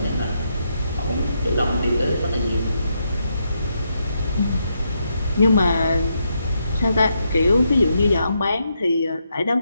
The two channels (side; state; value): both; inverted; correlation -0.80